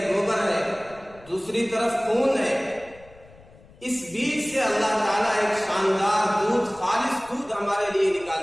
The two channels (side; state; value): left; noise; rumble, 24 dB below the sound